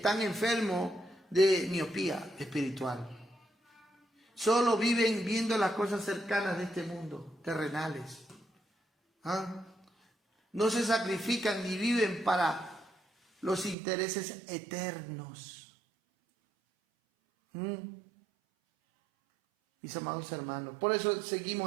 enfermos de miopía espiritual. Solo viven viendo las cosas cercanas de este mundo, terrenales. No se sacrifican ni viven para los intereses eternos. Mis amados hermanos, por eso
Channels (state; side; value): drops out; left; at 13.8 s